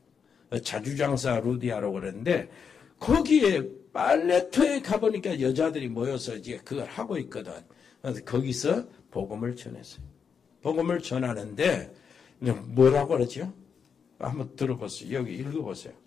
자주장사 루디아라고 그러는데 거기에 빨래터에 가보니까 여자들이 모여서 이제 그걸 하고 있거든. 그래서 거기서 복음을 전했어요. 복음을 전하는데 뭐라고 그러죠? 한번 들어보세요. 여기 읽어보세요.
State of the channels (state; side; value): quieter; right; 6.5 dB